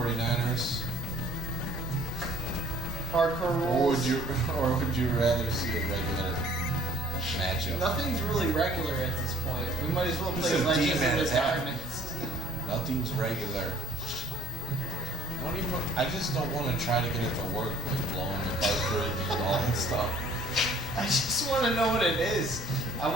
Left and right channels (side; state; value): both; normal; correlation 0.53